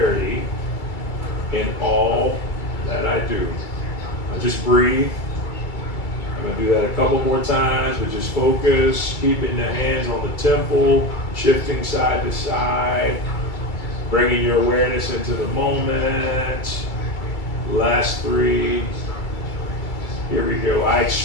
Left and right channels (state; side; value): late; right; 2.3 ms